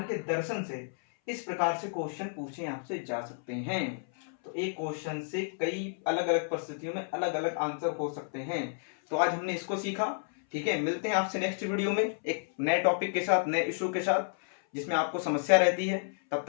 के दर्शन से इस प्रकार से क्वेश्चन पूछे आपसे जा सकते हैं। तो एक क्वेश्चन से कई अलग अलग परिस्थितियों में अलग अलग आंसर हो सकते हैं। तो आज हमने इसको सीखा। ठीक है, मिलते हैं आपसे नेक्स्ट वीडियो में एक नए टॉपिक के साथ, नए इशू के साथ, जिसमें आपको समस्या रहती है। तब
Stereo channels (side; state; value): right; silent; 57 dB below the other